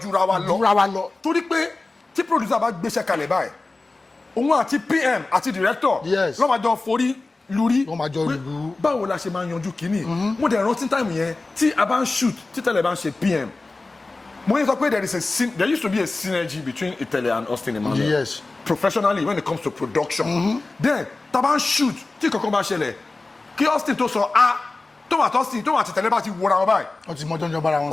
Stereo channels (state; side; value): quieter; right; 3.4 dB